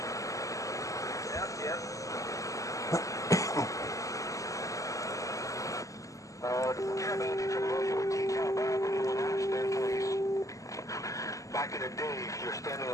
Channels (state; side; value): late; right; 0.16 ms